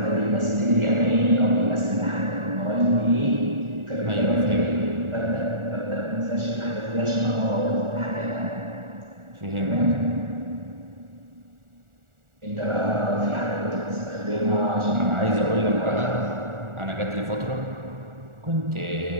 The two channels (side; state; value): left; late; 1.4 ms